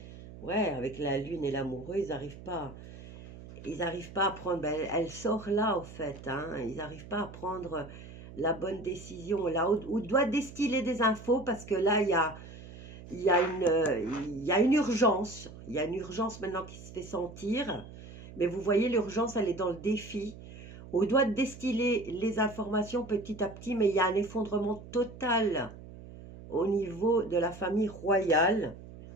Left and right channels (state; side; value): noise; right; hum, 15 dB below the sound